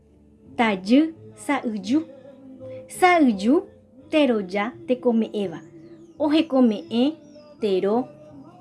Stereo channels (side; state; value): both; identical; correlation 1.00